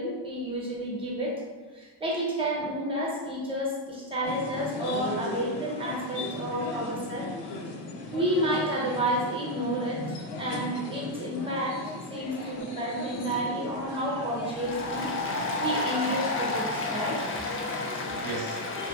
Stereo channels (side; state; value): both; normal; correlation 0.01